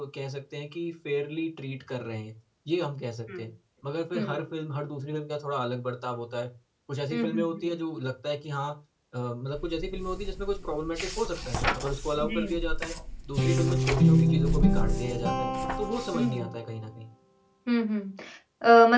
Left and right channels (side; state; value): both; identical; correlation 1.00